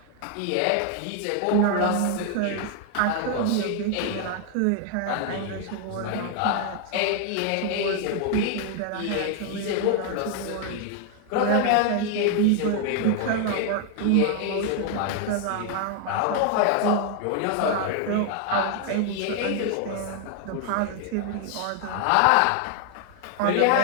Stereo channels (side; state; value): both; different; correlation 0.00